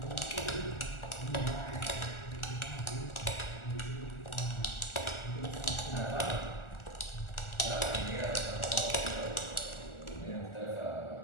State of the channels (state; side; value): late; right; 1.4 ms